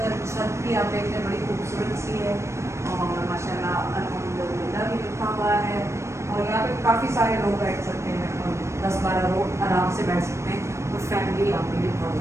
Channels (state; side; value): late; left; 0.13 ms